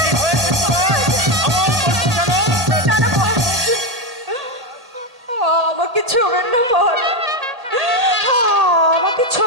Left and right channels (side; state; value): left; late; 1.8 ms